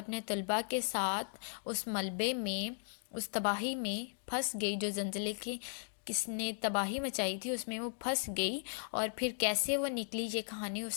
طلباء کے ساتھ اس ملبے میں، اس تباہی میں پھنس گئی۔ جو زلزلے کی کس نے تباہی مچائی تھی اس میں وہ پھنس گئی، اور پھر کیسے وہ نکلی، یہ کہانی اس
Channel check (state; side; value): silent; right; digital silence